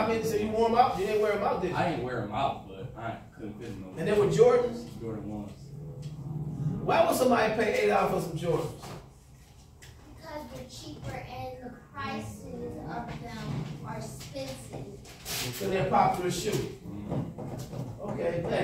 many? So you wore them out? You didn't wear them out, did you? I didn't wear them out, but I couldn't fit them. And they were Jordans? Jordan 1s. Why would somebody pay $8 for some Jordans? Because they're cheaper and the prices of them are expensive. So they're a popular shoe. Okay,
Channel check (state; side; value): identical; both; correlation 1.00